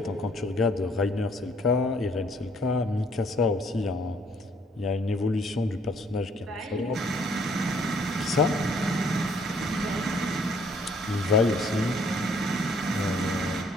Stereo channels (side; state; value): both; normal; correlation 0.63